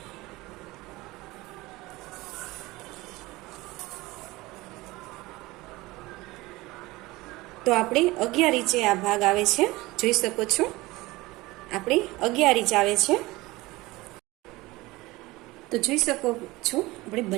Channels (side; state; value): left; quieter; 20.4 dB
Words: તો આપણે 11 ઇંચે આ ભાગ આવે છે, જોઈ શકો છો આપણે 11 ઇંચ આવે છે. તો જોઈ શકો છો આપણે